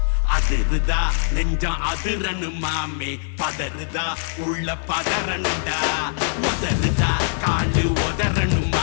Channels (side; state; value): right; silent; 57 dB below the other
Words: அதிருதா நெஞ்சம் அதிரனு மாமே, பதறுதா உள்ள பதறனுண்டா, உதறுதா காலு உதறனு